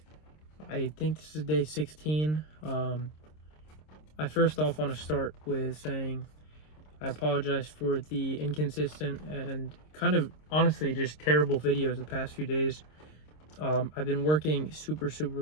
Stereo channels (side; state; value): right; late; 26 ms